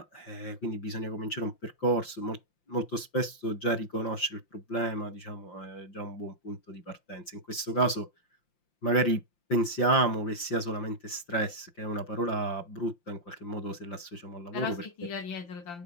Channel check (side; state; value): right; late; 5.8 ms